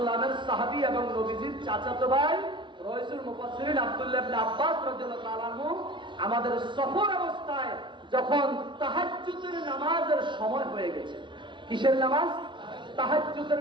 সাহাবী এবং নবীজির চাচাতো ভাই রাইসুল মুফাসসিরিন আব্দুল্লাহ ইবনে আব্বাস রাদিয়াল্লাহু তাআলা আনহু আমাদের সফর অবস্থায় যখন তাহাজ্জুদের নামাজের সময় হয়ে গেছে, কিসের নামাজ? তাহাজ্জুদের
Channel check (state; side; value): late; left; 0.24 ms